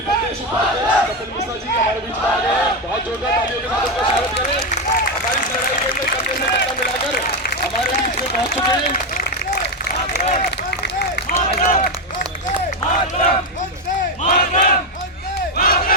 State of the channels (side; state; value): both; normal; correlation 0.09